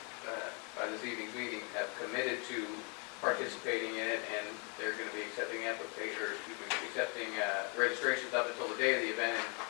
by this evening's meeting, have committed to participating in it, and they're going to be accepting registrations up until the day of the event. And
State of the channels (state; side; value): quieter; right; 34.4 dB